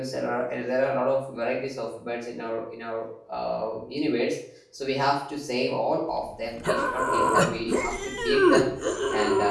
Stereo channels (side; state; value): both; identical; correlation 1.00